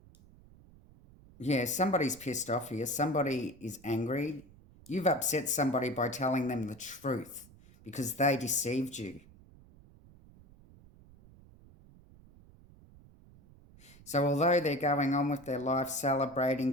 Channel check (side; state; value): right; noise; rumble, 24 dB below the sound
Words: yeah, somebody's pissed off here. Somebody is angry. You've upset somebody by telling them the truth because they deceived you. So although they're going on with their life,